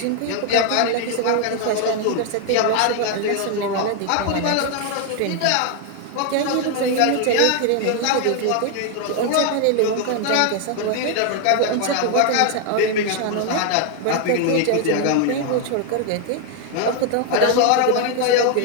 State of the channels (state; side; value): different; both; correlation 0.00